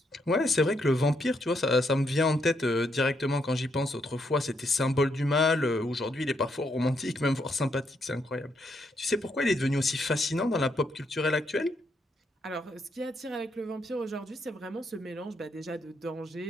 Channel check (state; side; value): normal; both; correlation 0.77